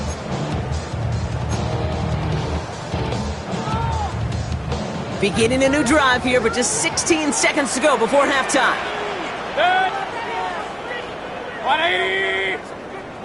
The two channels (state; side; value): identical; both; correlation 1.00